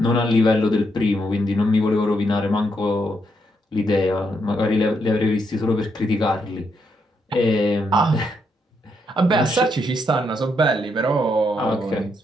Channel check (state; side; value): normal; both; correlation 0.78